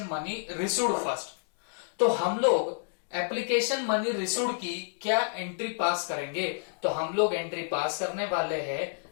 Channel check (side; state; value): right; silent; digital silence